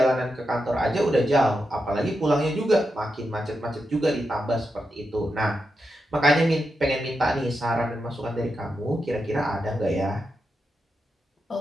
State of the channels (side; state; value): both; normal; correlation 0.87